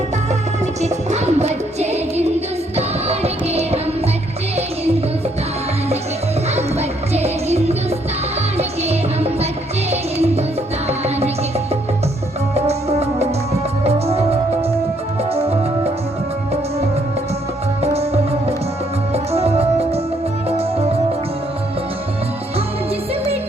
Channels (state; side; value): normal; both; correlation 0.70